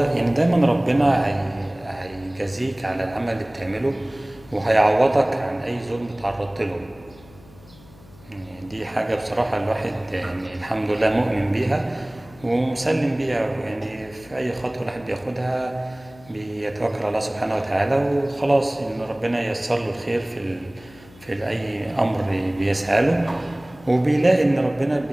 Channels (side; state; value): left; noise; hum, 23 dB below the sound